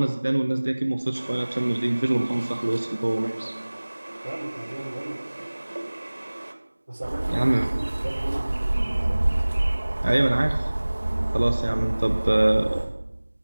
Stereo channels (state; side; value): inverted; both; correlation -1.00